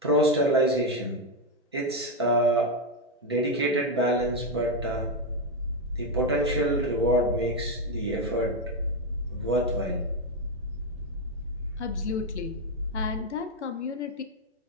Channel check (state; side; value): normal; both; correlation 0.06